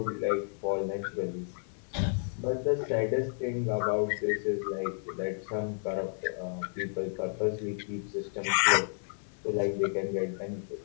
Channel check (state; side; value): silent; right; 57 dB below the other